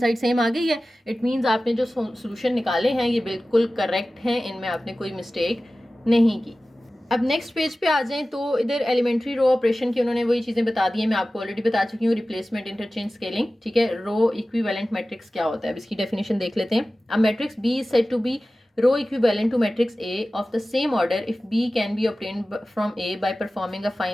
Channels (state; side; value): normal; both; correlation 0.96